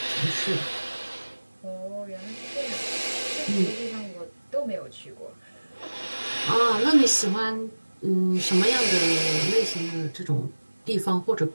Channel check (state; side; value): inverted; both; correlation -1.00